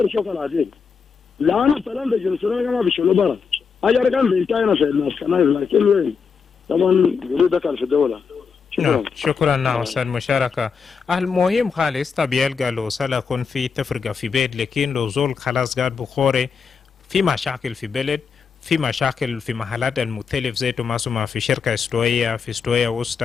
شغل عادي لانه السلام بجنوب السودان ما بيشيلوا برا اجر كان بيتاينا في الناس كنايس لكن وين طبعا جريده كان في الدوله. شكرا ناصر مشاركة. المهم خالص طبيعي قالوا سلكون في تفرقة في بيت لكن لو زول خلاص قاعد بخوري في مشاكل في بلد في مشاكل في محلات المختلف زي ما في شركة استوية في استوية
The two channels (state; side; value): quieter; right; 5.8 dB